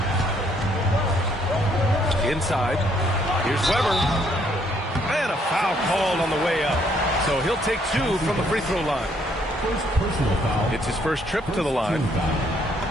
Inside. Here's Weber. And a foul called on the way up. So he'll take 2 from the free throw line. It's his first trip to the line.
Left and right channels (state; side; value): normal; both; correlation 0.68